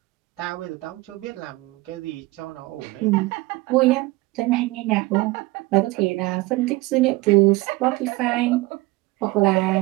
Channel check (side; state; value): left; quieter; 21.1 dB